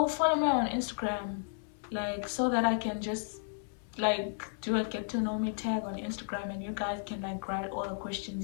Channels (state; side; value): silent; right; 56 dB below the other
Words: follow me on Instagram, so that I can just do a get to know me tag on Instagram, and you guys can write all the questions